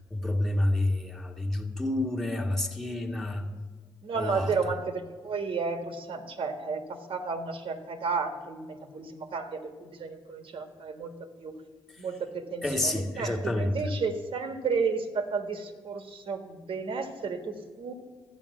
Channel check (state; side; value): normal; both; correlation 0.67